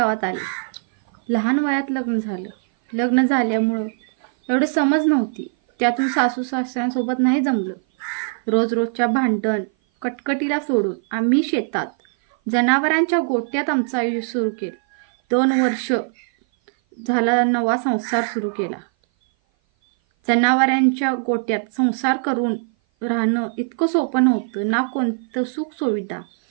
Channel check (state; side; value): silent; left; 57 dB below the other